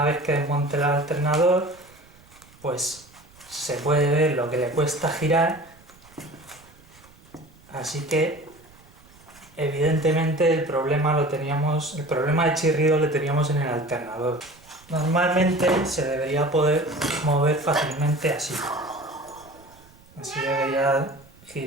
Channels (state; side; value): noise; right; rumble, 26 dB below the sound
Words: vez que desmonte el alternador, pues se puede ver lo que le cuesta girar, así que evidentemente el problema de chirrido lo teníamos en el alternador. Normalmente se debería poder mover fácilmente así. Así debería